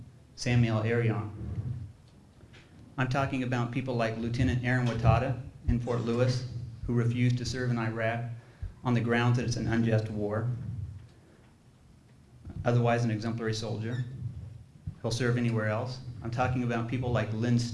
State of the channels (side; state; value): both; identical; correlation 1.00